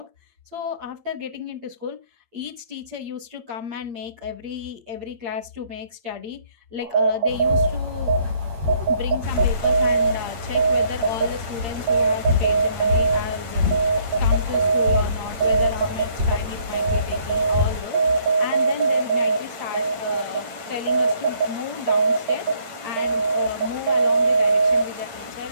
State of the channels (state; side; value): late; left; 8.7 ms